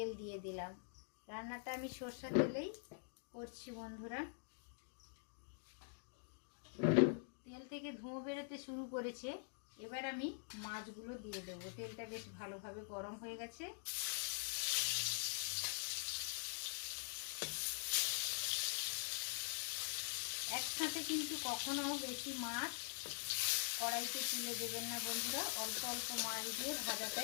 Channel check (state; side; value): silent; right; digital silence